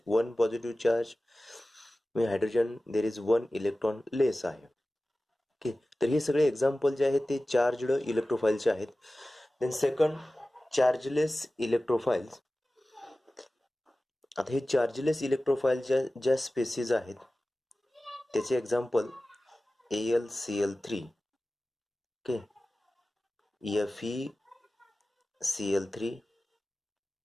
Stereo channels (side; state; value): both; normal; correlation 0.96